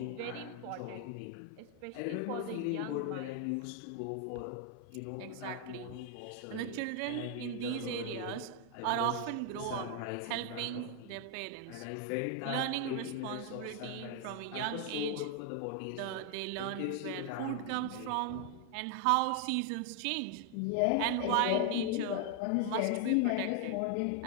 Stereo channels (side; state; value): both; different; correlation 0.00